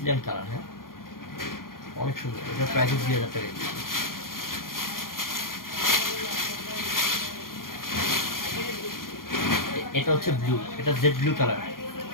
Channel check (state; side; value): late; right; 0.91 ms